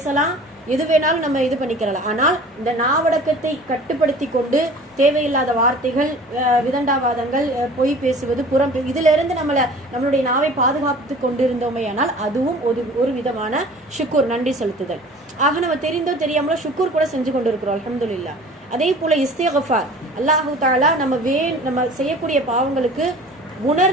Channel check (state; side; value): normal; both; correlation 0.45